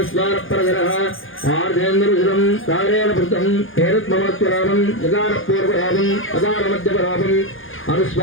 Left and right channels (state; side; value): late; right; 0.58 ms